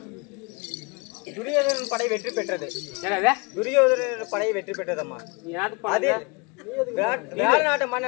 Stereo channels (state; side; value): quieter; right; 29.0 dB